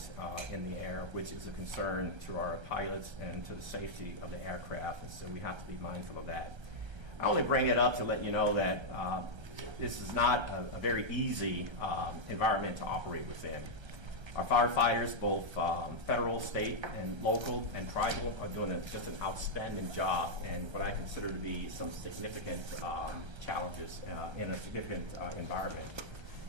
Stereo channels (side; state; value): left; late; 1.3 ms